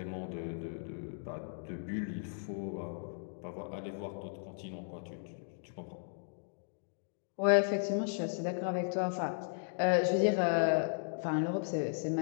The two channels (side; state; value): right; silent; digital silence